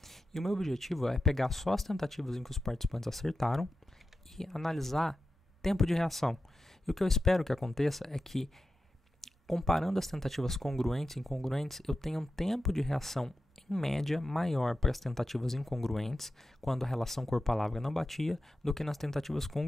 E o meu objetivo é pegar só as tentativas em que os participantes acertaram e analisar tempo de reação. E o que eu espero que aconteça é que, comparando as tentativas congruentes e incongruentes, eu tenha um tempo de reação, em média, maior para as tentativas incongruentes, quando a relação cor-palavra não batia, do que nas tentativas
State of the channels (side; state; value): both; normal; correlation 0.91